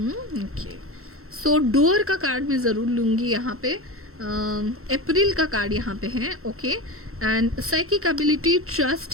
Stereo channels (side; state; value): left; late; 0.63 ms